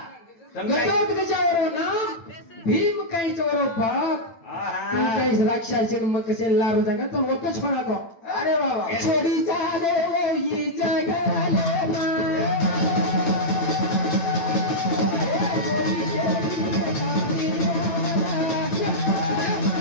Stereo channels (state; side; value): late; right; 8.9 ms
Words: गटत गजा ओरो नाम भीम काहीच ओरो बाप तू काही राक्षसी मग कसे लारू जागा तो वक्त छोरा तो अरे बाबा छोडी चाले ही जगाले मा